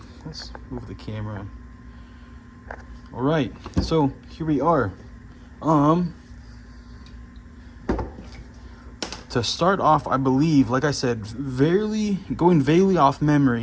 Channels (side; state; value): both; identical; correlation 1.00